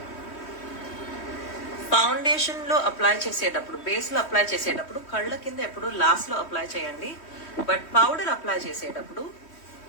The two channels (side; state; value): right; late; 3.1 ms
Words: ఫౌండేషన్ లో అప్లై చేసేటప్పుడు, బేస్ లో అప్లై చేసేటప్పుడు కళ్ళ కింద ఎప్పుడు లాస్ట్ లో అప్లై చేయండి. బట్ పౌడర్ అప్లై చేసేటప్పుడు